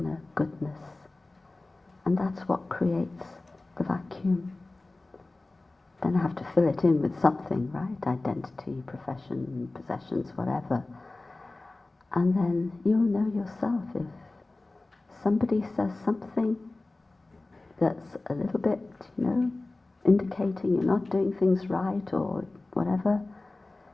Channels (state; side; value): quieter; right; 3.1 dB